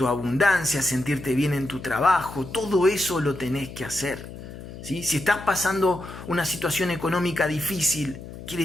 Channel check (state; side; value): noise; left; hum, 13 dB below the sound